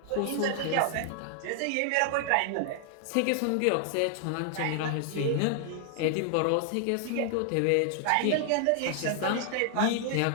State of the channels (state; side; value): different; both; correlation 0.00